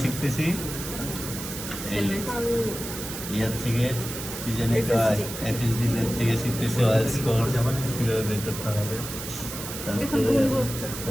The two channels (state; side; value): noise; right; hiss, 8 dB below the sound